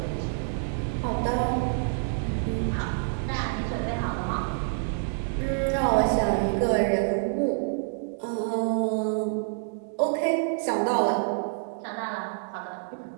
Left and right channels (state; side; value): silent; left; digital silence